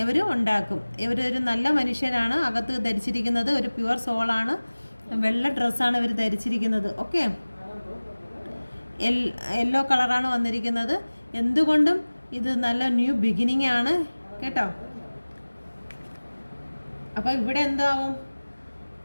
ഇവർ ഉണ്ടാക്കും. ഇവരൊരു നല്ല മനുഷ്യരാണ്. അകത്ത് ധരിച്ചിരിക്കുന്നത് ഒരു പ്യുവർ സോളാണ്. വെള്ള ഡ്രസ്സാണ് ഇവർ ധരിച്ചിരിക്കുന്നത്. ഓക്കെ, യെല്ലോ കളറാണ് വന്നിരിക്കുന്നത്. എന്തുകൊണ്ടും ഇത് നല്ല ന്യൂ ബിഗിനിങ് ആണ് കേട്ടോ. അപ്പോൾ ഇവിടെ എന്താവും,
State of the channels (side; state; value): both; inverted; correlation -1.00